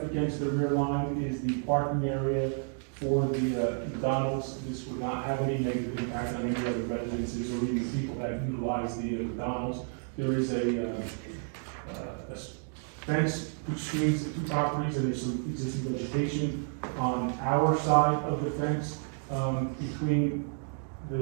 against the rear line is the parking area for the McDonald's. This would not have any negative impact on any other residences or even people that utilize the McDonald's. There is a fence which screens the 2 properties, and there's some existing vegetation on our side of the fence between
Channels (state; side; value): silent; left; 57 dB below the other